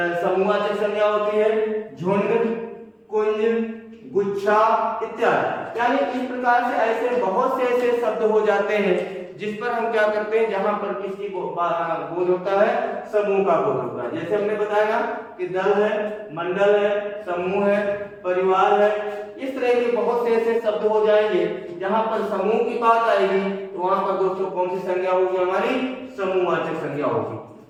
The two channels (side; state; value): both; identical; correlation 1.00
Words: समूहवाचक संज्ञा होती है, झुंड, कुंज, गुच्छा इत्यादि। यानी इस प्रकार से ऐसे बहुत से ऐसे शब्द हो जाते हैं जिस पर हम क्या करते हैं, जहां पर किसी को बोध होता है, समूह का बोध होता है। जैसे हमने बताया ना कि दल है, मंडल है, समूह है, परिवार है, इस तरह के बहुत से ऐसे शब्द हो जाएंगे जहां पर समूह की बात आएगी तो वहां पर दोस्तों कौन सी संज्ञा होगी? हमारी समूहवाचक संज्ञा होगी।